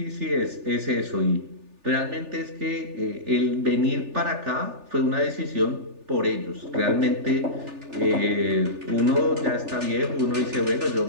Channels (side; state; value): left; late; 3.4 ms